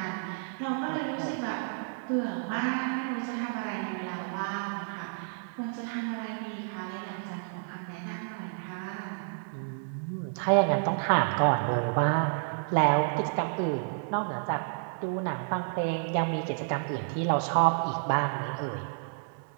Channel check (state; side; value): silent; left; digital silence